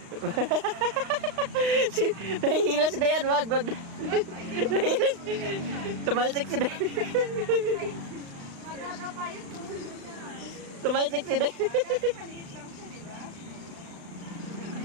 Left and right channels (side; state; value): left; late; 35 ms